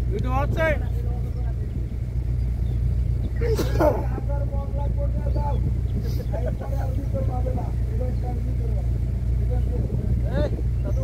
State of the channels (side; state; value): both; identical; correlation 1.00